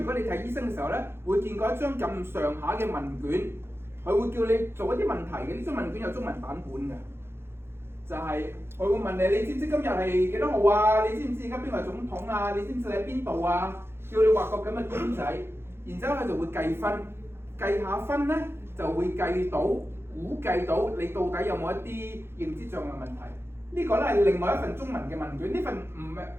果你睇醫生嘅時候咧，會見過一張咁上下嘅問卷，佢會叫你做一啲問題嘅。呢張問卷有中文版本嘅。就係佢會問你，你知唔知今日係幾多號啊？你知唔知而家邊個係總統啊？你知唔知你喺邊度啊？叫你畫個咁嘅卷仔，然之後佢就會計分，計下分咧就會估計到你到底有冇一啲認知障礙問題。呢個咧係另外一份中文嘅問卷，呢份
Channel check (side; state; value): left; late; 0.12 ms